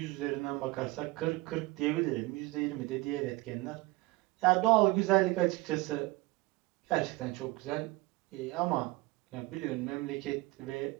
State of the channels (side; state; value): left; quieter; 21.9 dB